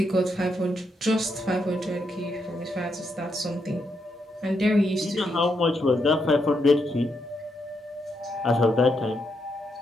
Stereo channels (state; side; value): normal; both; correlation 0.80